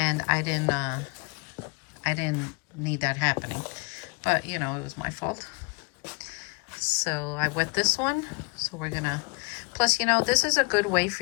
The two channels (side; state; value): right; quieter; 29.5 dB